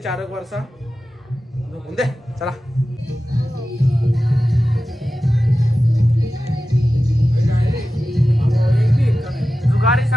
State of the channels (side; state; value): both; normal; correlation 0.94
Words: 4 वर्षा. दे चला. जुगारी